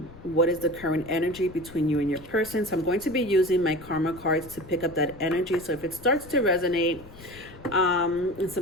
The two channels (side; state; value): left; noise; rumble, 18 dB below the sound